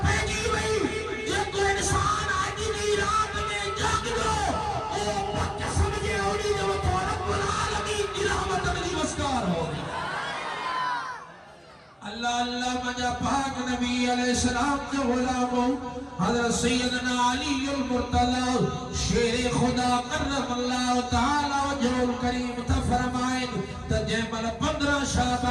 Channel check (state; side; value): identical; both; correlation 1.00